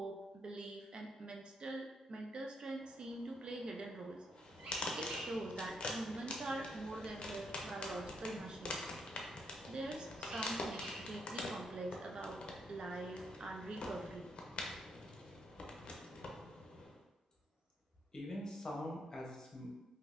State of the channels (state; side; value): normal; both; correlation 0.75